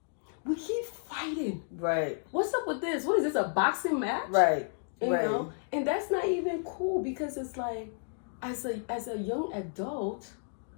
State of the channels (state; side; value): silent; right; 57 dB below the other